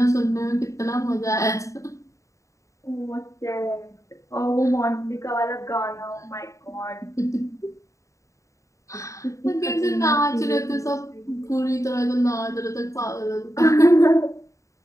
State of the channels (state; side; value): late; right; 0.15 ms